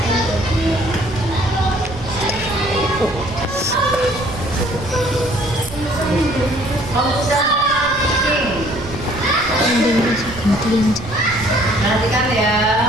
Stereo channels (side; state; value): right; noise; rumble, 13 dB below the sound